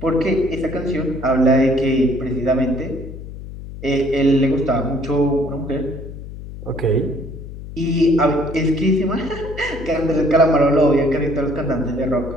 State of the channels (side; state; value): left; noise; hum, 12 dB below the sound